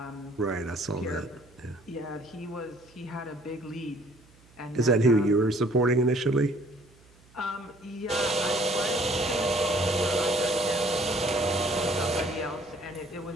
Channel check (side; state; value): right; noise; hum, 28 dB below the sound